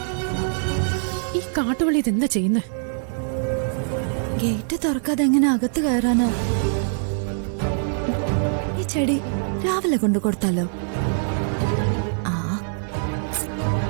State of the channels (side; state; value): left; silent; 63 dB below the other